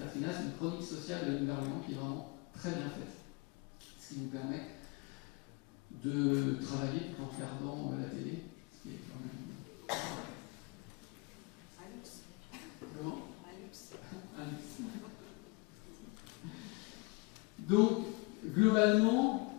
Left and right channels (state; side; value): quieter; right; 27.0 dB